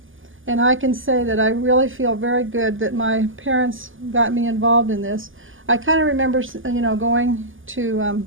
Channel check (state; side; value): late; left; 0.58 ms